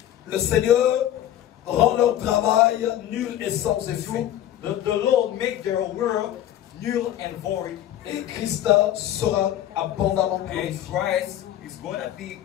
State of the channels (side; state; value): right; quieter; 12.0 dB